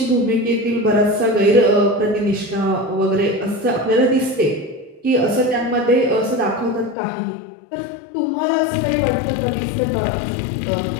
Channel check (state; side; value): drops out; right; at 7.0 s